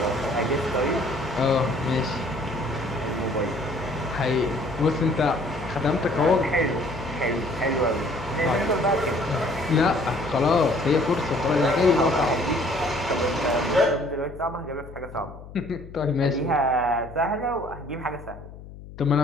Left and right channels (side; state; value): left; noise; hum, 16 dB below the sound